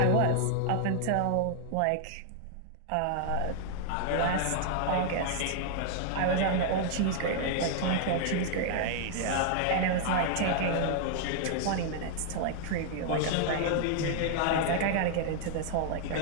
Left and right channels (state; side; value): different; both; correlation 0.00